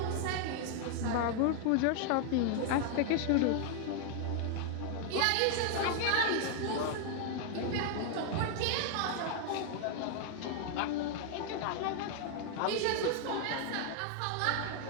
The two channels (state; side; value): different; both; correlation 0.00